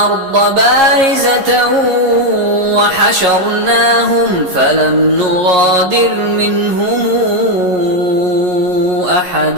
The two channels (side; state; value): left; late; 11 ms